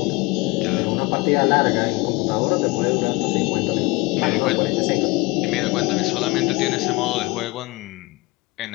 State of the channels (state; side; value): quieter; right; 23.9 dB